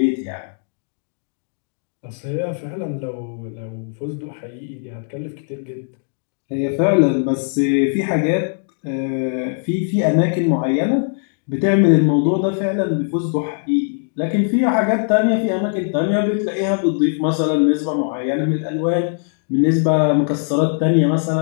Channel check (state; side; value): silent; right; digital silence